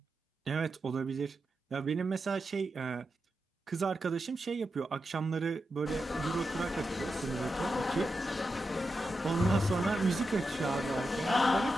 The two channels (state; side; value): normal; both; correlation 0.89